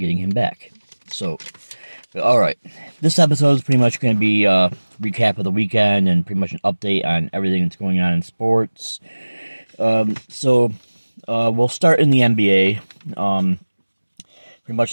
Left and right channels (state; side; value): inverted; both; correlation -1.00